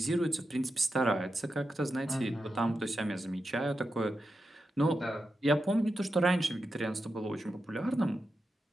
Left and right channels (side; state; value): both; normal; correlation 0.88